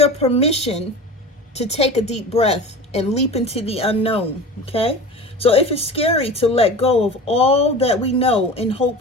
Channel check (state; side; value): normal; both; correlation 0.34